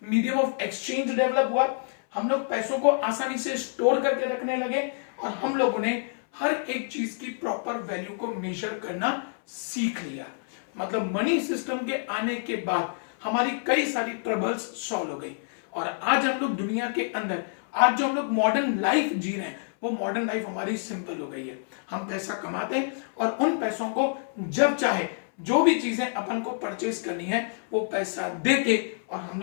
मीडियम ऑफ एक्सचेंज डेवलप हुआ, हम लोग पैसों को आसानी से स्टोर करके रखने लगे और हम लोगों ने हर एक चीज की प्रॉपर वैल्यू को मेजर करना सीख लिया। मतलब मनी सिस्टम के आने के बाद हमारी कई सारी ट्रबल्स सॉल्व हो गई और आज हम लोग दुनिया के अंदर, आज जो हम लोग मॉडर्न लाइफ जी रहे हैं, वो मॉडर्न लाइफ हमारी सिंपल हो गई है। हम पैसा कमाते हैं और उन पैसों को जब चाहे जो भी चीजें अपन को परचेस करनी है वो पैसा देके और हम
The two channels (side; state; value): right; silent; 60 dB below the other